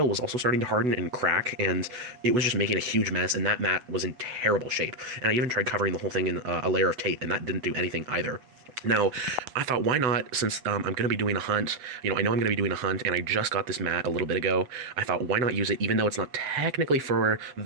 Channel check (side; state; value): left; late; 8.1 ms